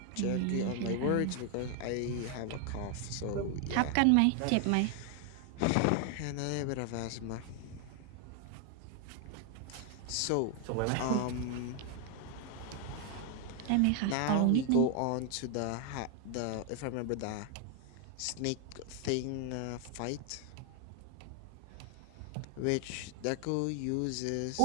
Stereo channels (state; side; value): different; both; correlation 0.00